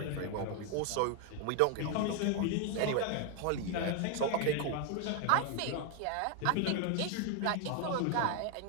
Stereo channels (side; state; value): both; different; correlation 0.01